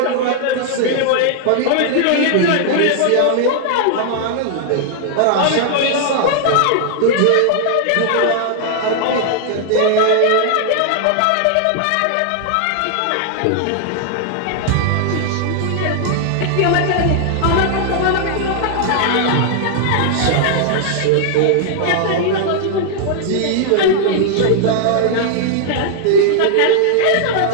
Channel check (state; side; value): different; both; correlation -0.01